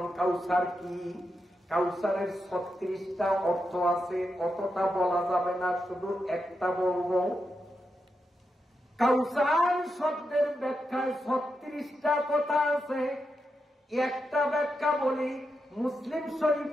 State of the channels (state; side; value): normal; both; correlation 0.86